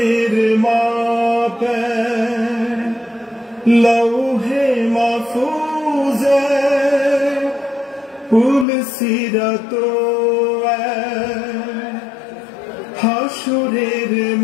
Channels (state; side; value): drops out; right; at 8.7 s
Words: মাপে লৌহে মাহফুজে পুল সিরাত হাসরের